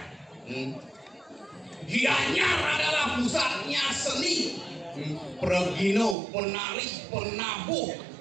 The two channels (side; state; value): left; drops out; at 6.2 s